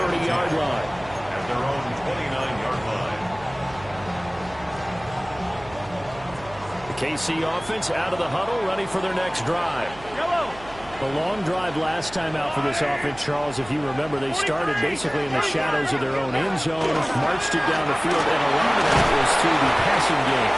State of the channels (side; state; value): right; noise; hum, 19 dB below the sound